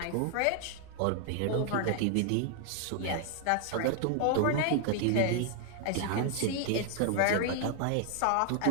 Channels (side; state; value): both; different; correlation 0.00